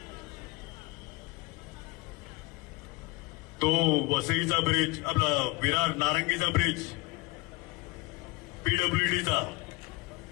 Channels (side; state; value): right; quieter; 23.8 dB